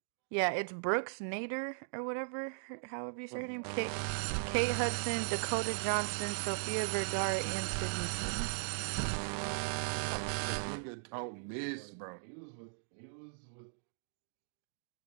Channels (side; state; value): left; silent; digital silence